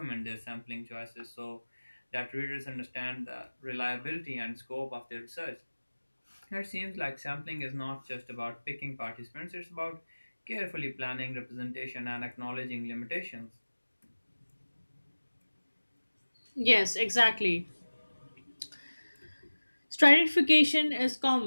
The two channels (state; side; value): inverted; both; correlation -1.00